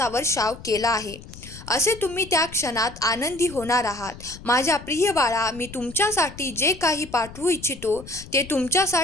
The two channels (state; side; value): noise; left; rumble, 16 dB below the sound